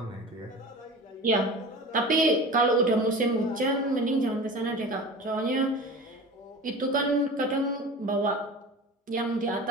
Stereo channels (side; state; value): both; normal; correlation 0.34